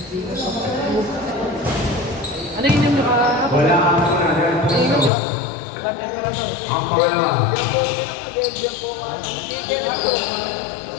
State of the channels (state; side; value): drops out; right; at 5.1 s